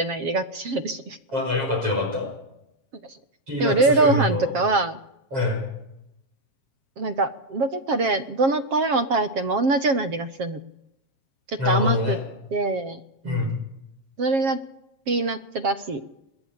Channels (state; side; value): late; left; 7.4 ms